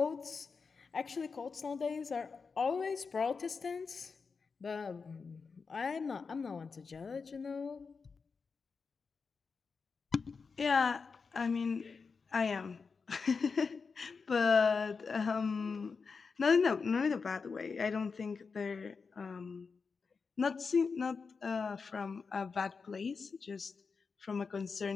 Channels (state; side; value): quieter; right; 5.0 dB